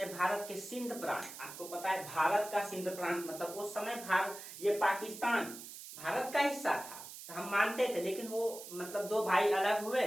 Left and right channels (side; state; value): right; noise; hiss, 12 dB below the sound